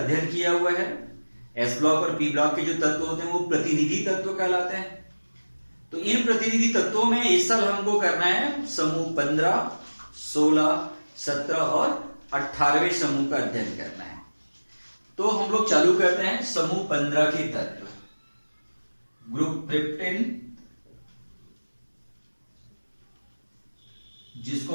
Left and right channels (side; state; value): both; inverted; correlation -1.00